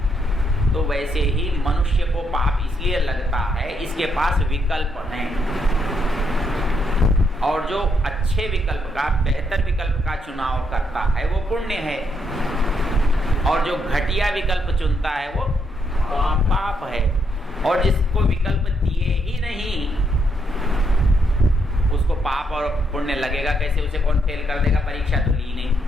तो वैसे ही मनुष्य को पाप इसलिए लगता है इसके पास विकल्प हैं, और जो अच्छे विकल्प का, बेहतर विकल्प का चुनाव करता है वो पुण्य है, और जो घटिया विकल्प चुनता है वो पाप है। और जिसको विकल्प दिए ही नहीं उसको पाप और पुण्य लगेगा कैसे? उसे कौन फेल कर देगा? परीक्षा तो ली नहीं,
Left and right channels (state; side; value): normal; both; correlation 0.77